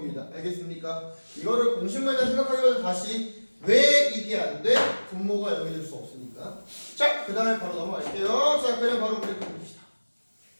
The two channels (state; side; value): inverted; both; correlation -1.00